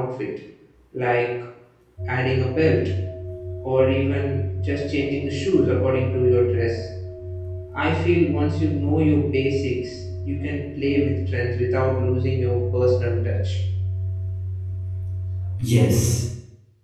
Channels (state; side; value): identical; both; correlation 1.00